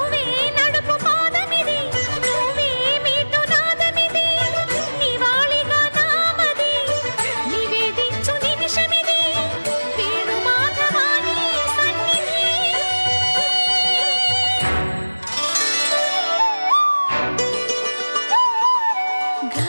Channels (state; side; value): inverted; both; correlation -1.00